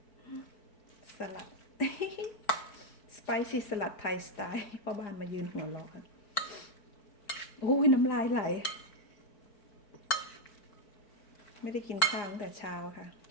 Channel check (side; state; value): right; late; 4.5 ms